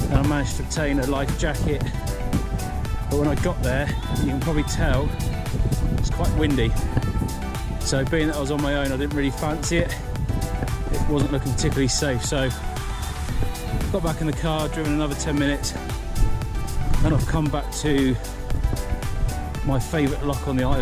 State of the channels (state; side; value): identical; both; correlation 1.00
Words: I managed to obtain a life jacket. But when I got there, you can probably tell it's quite windy. So being that I was on my own, I didn't really fancy it. It wasn't looking particularly safe. So got back in the car, driven another 10 minutes, and I've come back to my favourite lock on the